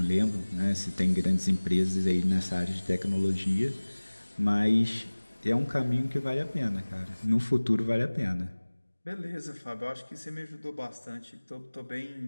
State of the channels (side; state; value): both; inverted; correlation -1.00